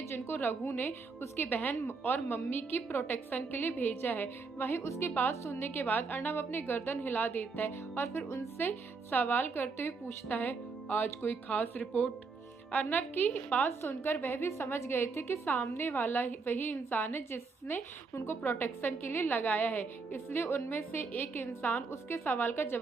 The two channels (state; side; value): quieter; left; 4.5 dB